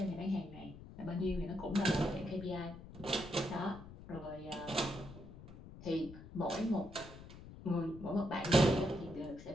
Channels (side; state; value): left; noise; rumble, 15 dB below the sound